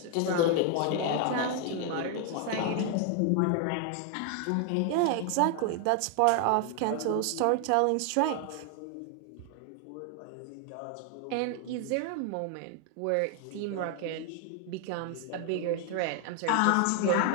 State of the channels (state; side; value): different; both; correlation 0.00